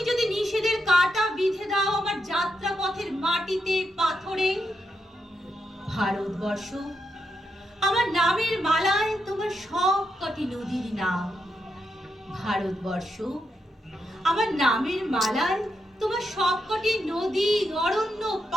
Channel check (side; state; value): both; normal; correlation 0.83